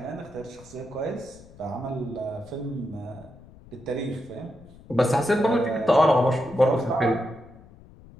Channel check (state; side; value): noise; left; rumble, 22 dB below the sound